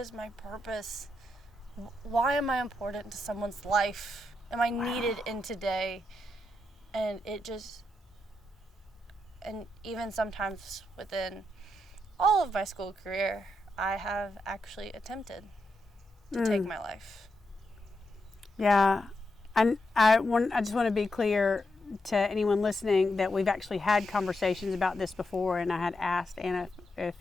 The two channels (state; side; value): normal; both; correlation 0.84